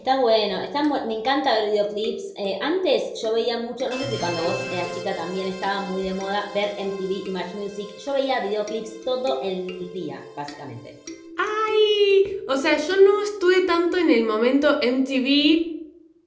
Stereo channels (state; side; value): identical; both; correlation 1.00